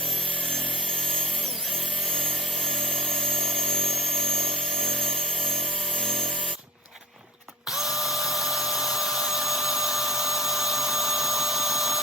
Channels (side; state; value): both; normal; correlation 0.47